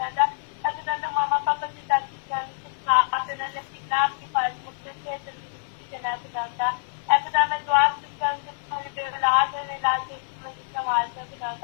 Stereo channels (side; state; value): right; silent; digital silence